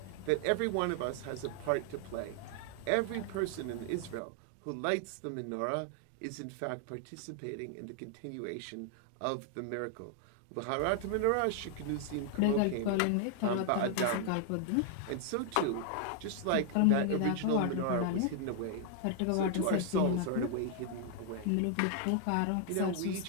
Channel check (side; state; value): both; different; correlation 0.00